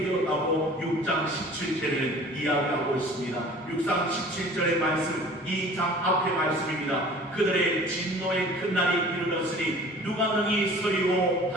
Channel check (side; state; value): both; normal; correlation 0.46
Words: 되었다고 6장 17절에는 이야기하고 있습니다. 6장 17절의 말씀, 이 장 앞의 말씀입니다. 그들의 진노의 큰 날이 이르렀으니 누가 능히 서리오